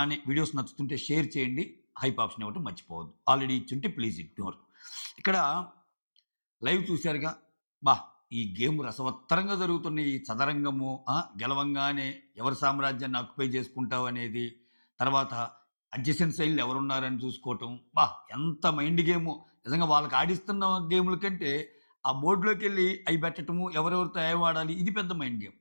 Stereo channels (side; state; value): both; inverted; correlation -1.00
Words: వీడియోస్ నచ్చుతుంటే షేర్ చేయండి. హైప్ ఆప్షన్ ఇవ్వటం మర్చిపోవద్దు. ఆల్రెడీ ఇచ్చుంటే ప్లీజ్ ఇగ్నోర్. ఇక్కడ లైవ్ చూసారుగా. అబ్బా! ఈ గేమ్ రసవత్తరంగా జరుగుతున్న ఈ చదరంగము, గెలవంగానే ఎవరి సామ్రాజ్యాన్ని ఆక్యుపై చేసుకుంటావనేది, తర్వాత అడ్జసెంట్ సైడ్‌లో ఎవరున్నారని చూసుకోవటం. ఎంత మైండ్ గేమో. నిజంగా వాళ్ళకి ఆడిస్తున్న గేముల కంటే ఆ బోర్డ్‌లోకెళ్ళి అయి పెట్టటము, ఎవరెవరితో ఏం ఆడాలి ఇది పెద్ద mind game.